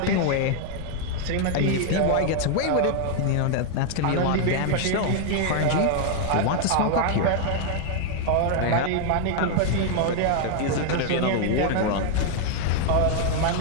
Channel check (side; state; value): both; different; correlation 0.00